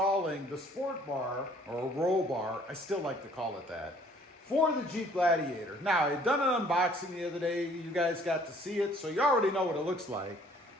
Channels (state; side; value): normal; both; correlation 0.58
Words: the sport bar, or roll bar, I still like to call it that, for the Jeep Gladiator. Now, I had done an unboxing the other day, you guys got to see it, so you already know what it looks like.